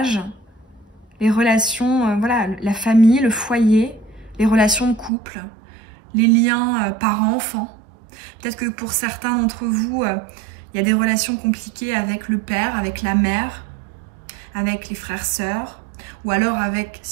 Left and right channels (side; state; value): left; drops out; at 5.1 s